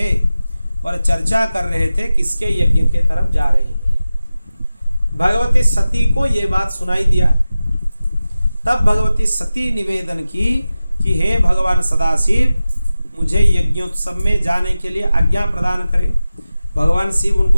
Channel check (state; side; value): inverted; both; correlation -0.95